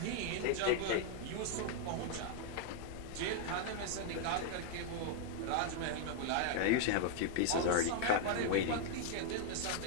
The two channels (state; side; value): different; both; correlation 0.00